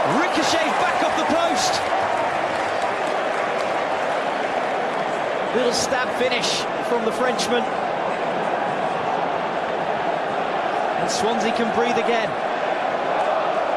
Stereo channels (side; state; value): both; identical; correlation 1.00